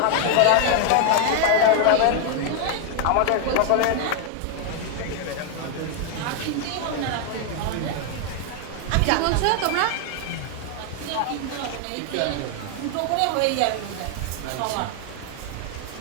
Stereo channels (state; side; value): different; both; correlation 0.00